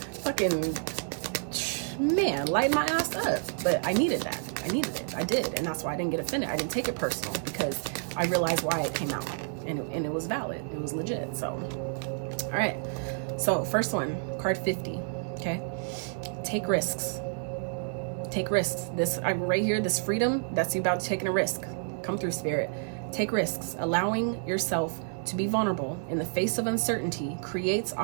fucking, man, light my ass up. But I needed that. I needed it. I did, and that's why I didn't get offended. I didn't take it personal because I realized why it came out, and it was valid. It was legit. So, all right. So first one, card 50. Okay, take risks. Take risks. This right here, this freedom, that's you about taking a risk. Come through, Spirit. Take risks. Allowing yourself to be vulnerable in the face of uncertainty creates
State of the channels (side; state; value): left; silent; 58 dB below the other